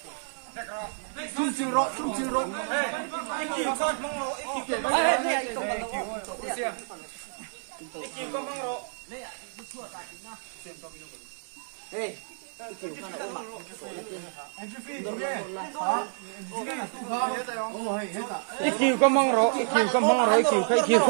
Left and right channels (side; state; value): left; silent; 57 dB below the other